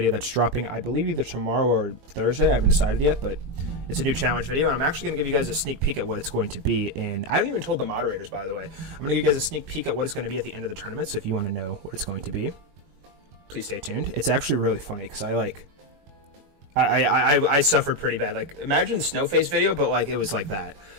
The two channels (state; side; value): late; left; 21 ms